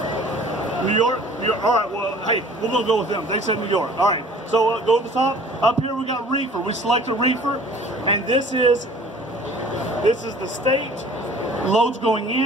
New York. All right, well, hey, we're going to go with them. They said New York. All right, so go to the top. Up here we got reefer. We select a reefer, and this is the state. Loads going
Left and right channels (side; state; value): both; normal; correlation 0.49